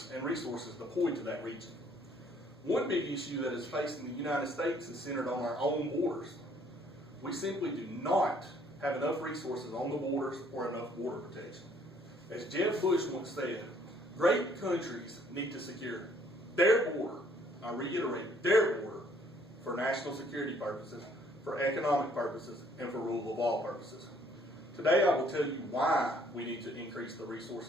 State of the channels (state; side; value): normal; both; correlation 0.62